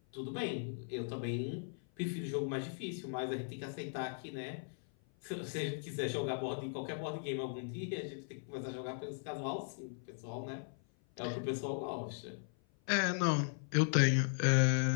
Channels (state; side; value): silent; right; 53 dB below the other